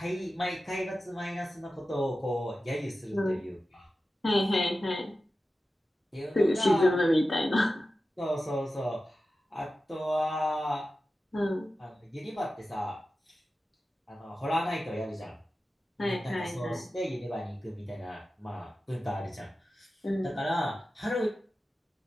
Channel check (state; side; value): normal; both; correlation 0.93